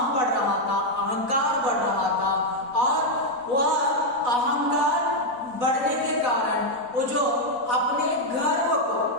बढ़ रहा था, अहंकार बढ़ रहा था, और वह अहंकार बढ़ने के कारण वो जो अपने गर्व को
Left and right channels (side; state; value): left; late; 4.0 ms